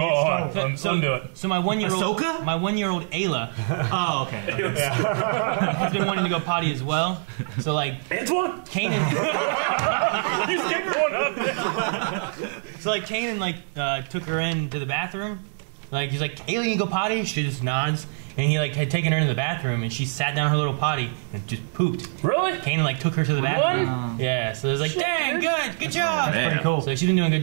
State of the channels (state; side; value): silent; left; digital silence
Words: Undo it. So my 1-year-old Ahsoka? my 1-year-old Ayla Oh, okay. has been wanting to go potty as well. So like Antoine? Kanan, He's getting one up. so like Kanan took her into the bathroom. Like he's like, Ayla, you go potty? She just nods. And he like had taken her into the bathroom, and she sat down in her little potty and just pooped. Really? Kanan like took her to the bathroom. Yeah, so it was like, dang, good job. Damn. pretty cool. So she's been doing a good